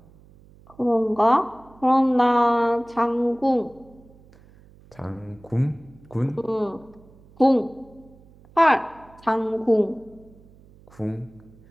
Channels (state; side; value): noise; right; hum, 26 dB below the sound